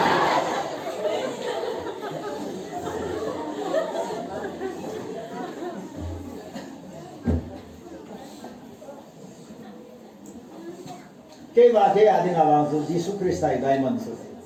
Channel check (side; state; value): both; identical; correlation 1.00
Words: Cái mà thế à thì ngài bảo dù Jesus Christ tại đại môn rồi,